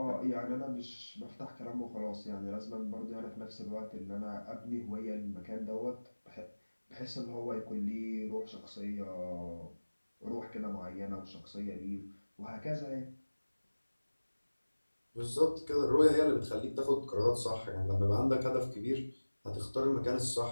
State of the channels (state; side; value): inverted; both; correlation -1.00